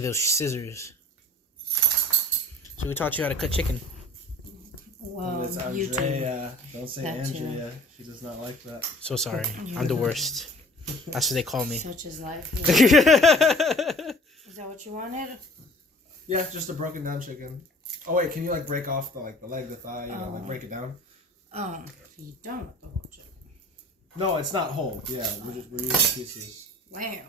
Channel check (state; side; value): normal; both; correlation 0.47